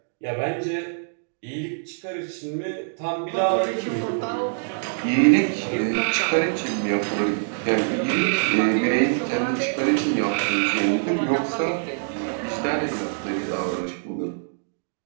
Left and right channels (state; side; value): silent; left; digital silence